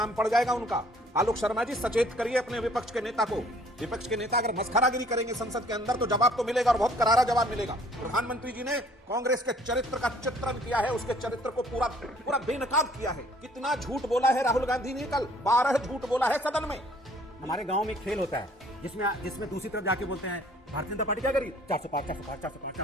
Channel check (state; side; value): normal; both; correlation 0.57